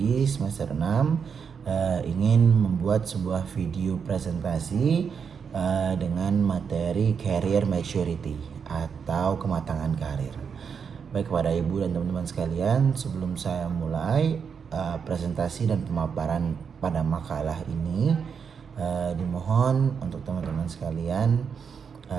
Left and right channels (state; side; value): quieter; left; 6.5 dB